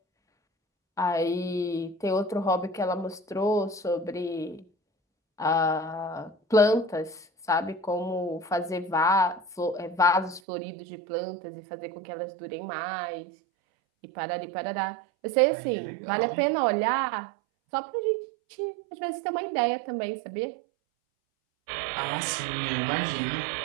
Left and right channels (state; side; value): drops out; left; at 10.4 s